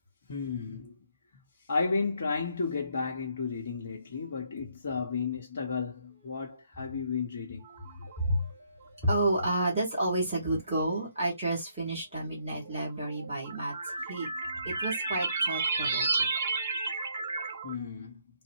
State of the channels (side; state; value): both; inverted; correlation -0.70